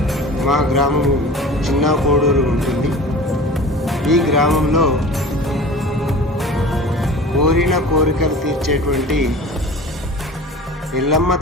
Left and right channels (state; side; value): normal; both; correlation 0.39